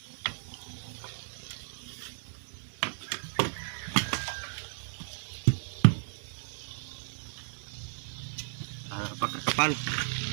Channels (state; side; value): silent; left; 55 dB below the other